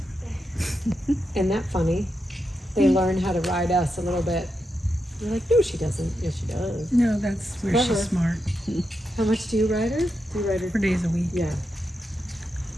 Isn't that funny? They learn how to ride us a little bit. You're like, no, she doesn't. Yes, she does. No, that's where Clever. she's smart. How much do you ride her? Do you ride her? 4 days a week. Yeah.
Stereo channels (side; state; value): both; normal; correlation 0.86